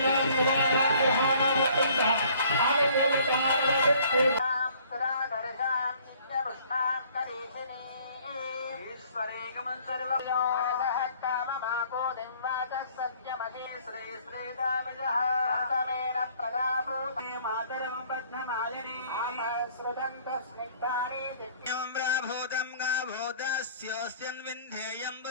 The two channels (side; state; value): both; inverted; correlation -0.57